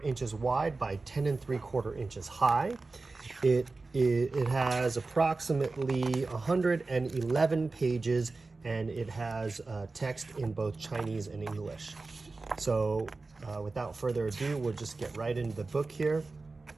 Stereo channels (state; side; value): quieter; left; 3.7 dB